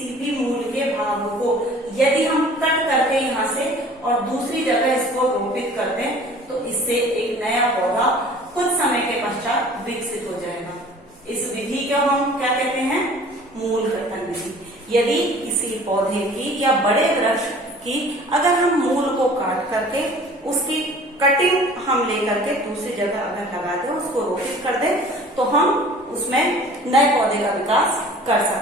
भी मूल के भाग को यदि हम कट करके यहाँ से और दूसरी जगह इसको रोपित कर दें तो इससे एक नया पौधा कुछ समय के पश्चात विकसित हो जाएगा। इस विधि को हम क्या कहते हैं? मूल कर्तन विधि। यदि किसी पौधे की या बड़े वृक्ष की अगर हम मूल को काट करके उसकी कटिंग हम लेकर के दूसरी जगह अगर लगा दें, उसको रोपित कर दें, तो हम उसमें नए पौधे का विकास कर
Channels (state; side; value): normal; both; correlation 0.48